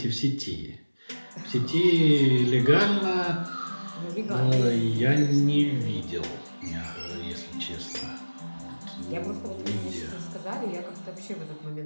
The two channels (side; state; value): both; inverted; correlation -1.00